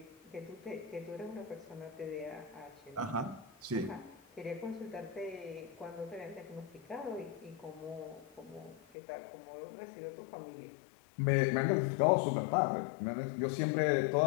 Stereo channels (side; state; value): right; drops out; at 8.8 s